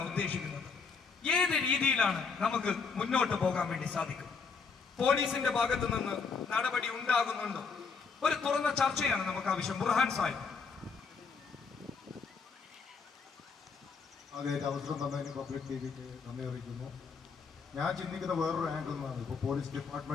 ഉദ്ദേശിക്കുന്നത്. ഏത് രീതിയിലാണ് നമുക്ക് മുന്നോട്ട് പോകാൻ വേണ്ടി സാധിക്കും? പോലീസിന്റെ ഭാഗത്ത് നിന്ന് നടപടി ഉണ്ടാകുന്നുണ്ടോ? ഒരു തുറന്ന ചർച്ചയാണ് നമുക്ക് ആവശ്യം. ബുർഹാൻ സാഹിബ്. ആദ്യമായിട്ട് അവസരം തന്നതിന് പബ്ലിക് ടിവിക്ക് നന്ദി അറിയിക്കുന്നു. ഞാൻ ചിന്തിക്കുന്ന വേറൊരു ആംഗിൾ നിന്നാണ്. ഇപ്പോൾ പോലീസ്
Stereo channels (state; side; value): quieter; right; 5.2 dB